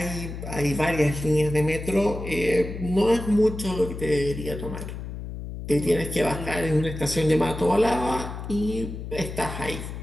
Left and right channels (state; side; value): noise; left; hum, 8 dB below the sound